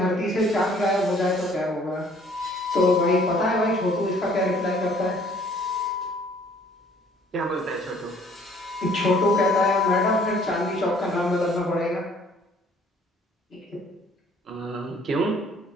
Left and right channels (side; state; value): both; normal; correlation 0.58